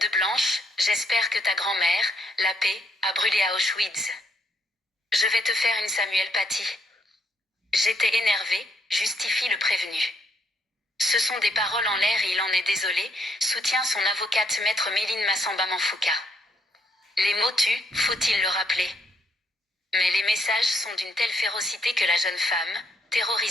blanche, j'espère que ta grand-mère, la paix, a brûlé à Auschwitz. Je vais te faire une Samuel Paty. J'étais énervé, justifie le prévenu. Ce sont des paroles en l'air et il en est désolé, soutient son avocate maître Méline Massamba-Manfouka. Les mots tuent, faut-il le rappeler. Mais les messages sont d'une telle férocité que la jeune femme,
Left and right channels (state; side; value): normal; both; correlation 0.74